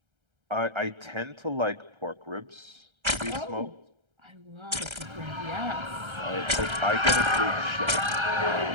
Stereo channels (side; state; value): left; late; 1.3 ms